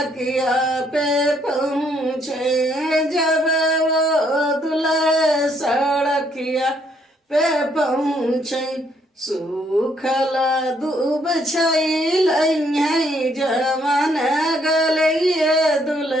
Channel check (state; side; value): normal; both; correlation 0.69